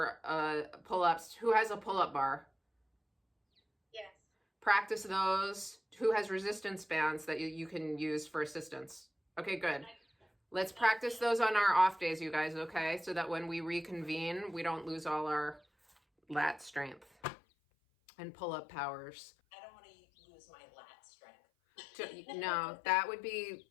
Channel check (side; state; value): right; drops out; at 17.1 s